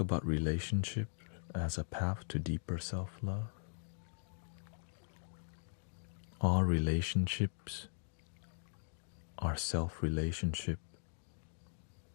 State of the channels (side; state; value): right; silent; digital silence